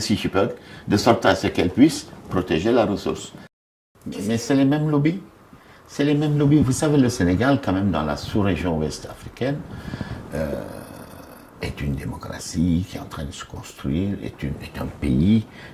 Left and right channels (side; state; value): both; identical; correlation 1.00